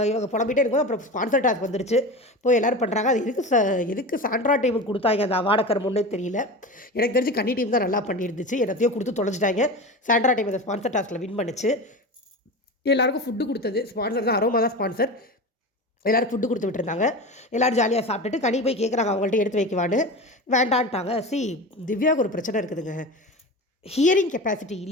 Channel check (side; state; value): both; normal; correlation 0.28